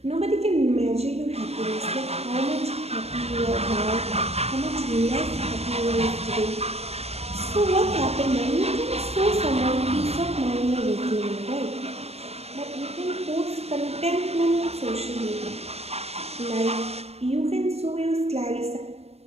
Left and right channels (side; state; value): left; late; 0.30 ms